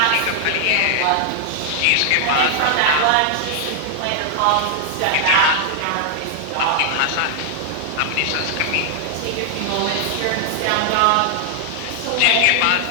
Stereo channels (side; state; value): both; different; correlation 0.00